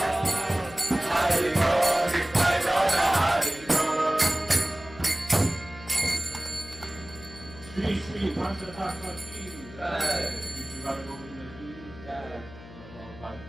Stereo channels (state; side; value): noise; left; hum, 17 dB below the sound